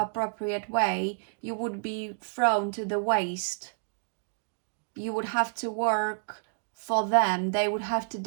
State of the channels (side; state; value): left; silent; digital silence